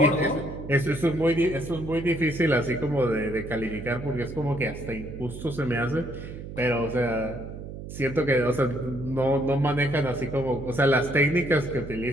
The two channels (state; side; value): noise; right; hum, 10 dB below the sound